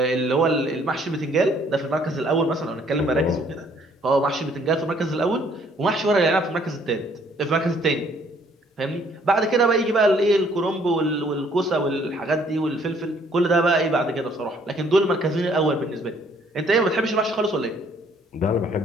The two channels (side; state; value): both; normal; correlation 0.63